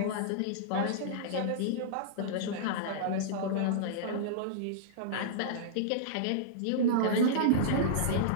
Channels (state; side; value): different; both; correlation -0.02